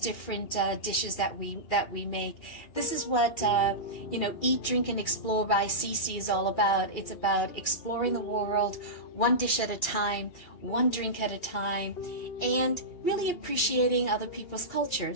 dishes that we make. This is what you know, Eat, Drink, and Explore by CC is all about. It's about exploring the world one dish at a time, one drink at a time, and really appreciating other people's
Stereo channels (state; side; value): late; right; 2.8 ms